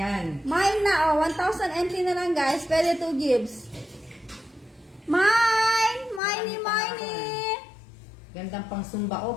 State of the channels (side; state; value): right; drops out; at 6.2 s